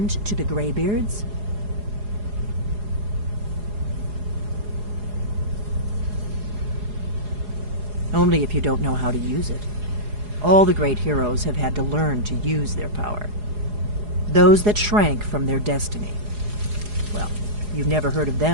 to the Greybeards? Only if you don't know how to use it. All the great heroes have had to learn to use their power. Those that shrank from their destiny. Well, you've never heard of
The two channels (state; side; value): late; left; 4.8 ms